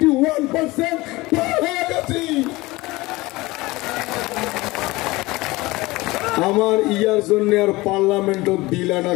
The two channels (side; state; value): right; quieter; 20.9 dB